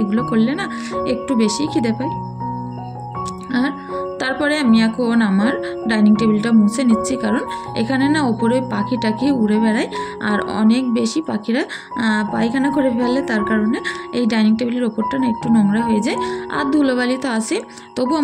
এগুলো করলে না একটু বেশি খিদে পায়। আর তারপরে আমি এখন আমার ডাইনিং টেবিলটা মুছে নিচ্ছি কারণ এখানে না ওপরে পাখি টাকি উড়ে বেড়ায় আর অনেক বেশি পাখিরা পায়খানা করে ফেলে, তার কারণে এই ডাইনিং টেবিলের ওপরটা না একটু নোংরা হয়ে যায়। আর ধুলোবালি তো আসে, তবু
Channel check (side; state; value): both; identical; correlation 1.00